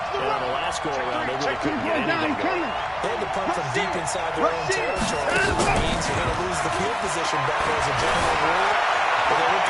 And on the last go-around, they really couldn't get anything going. They had to punt from deep inside their own territory. That means you're going to lose the field position battle as a general rule. But they're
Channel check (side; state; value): both; identical; correlation 1.00